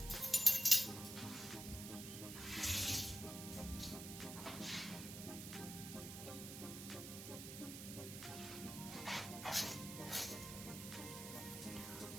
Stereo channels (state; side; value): noise; right; hiss, 9 dB below the sound